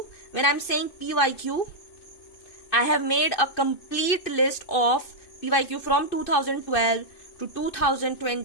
when I'm saying PYQ, I have made a complete list of PYQ from 2012 to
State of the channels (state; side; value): late; right; 2.6 ms